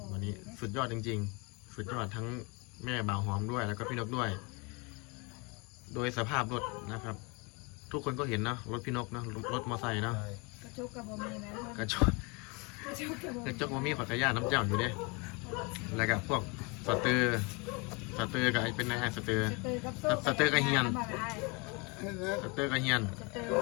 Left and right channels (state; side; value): quieter; right; 29.9 dB